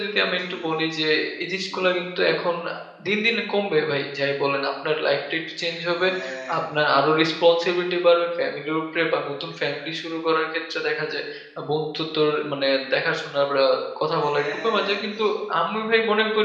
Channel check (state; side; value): identical; both; correlation 1.00